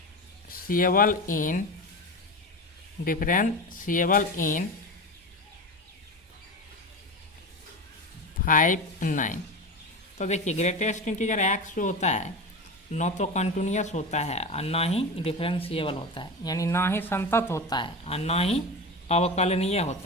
in 5, 9। तो देखिए ग्रेटेस्ट इंटीजर x जो होता है न तो कंटिन्यूस होता है और ना ही डिफरेंशिएबल होता है, यानी ना ही संतत होता है और ना ही अवकलनीय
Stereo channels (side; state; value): both; normal; correlation 0.25